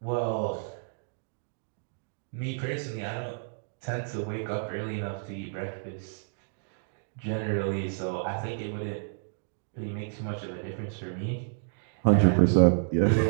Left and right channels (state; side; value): silent; left; digital silence